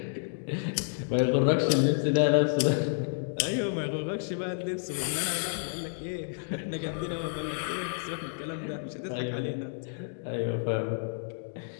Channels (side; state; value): right; silent; digital silence